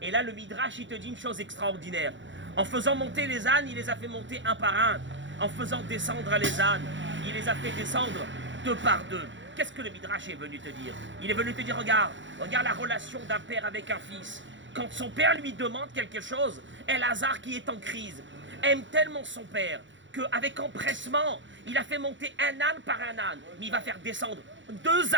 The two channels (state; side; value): late; left; 0.54 ms